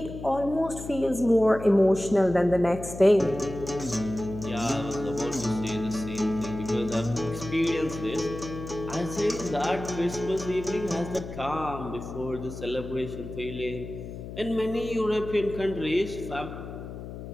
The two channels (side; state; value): left; noise; hum, 10 dB below the sound